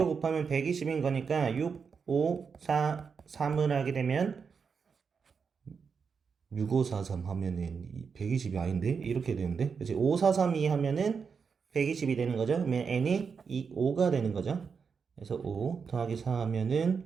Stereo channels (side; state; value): left; quieter; 5.8 dB